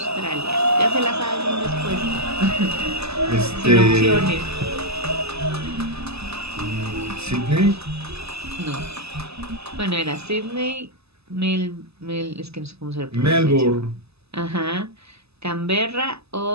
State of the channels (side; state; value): left; late; 0.79 ms